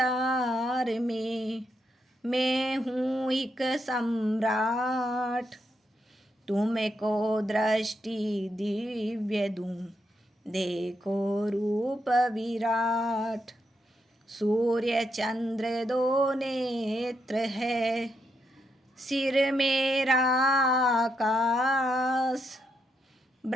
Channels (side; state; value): both; normal; correlation 0.81